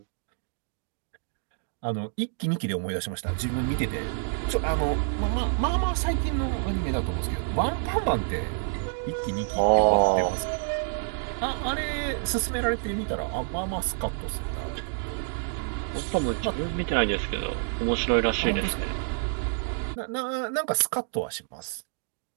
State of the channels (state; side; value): silent; left; digital silence